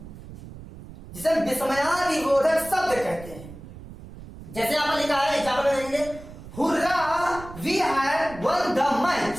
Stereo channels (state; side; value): noise; right; rumble, 15 dB below the sound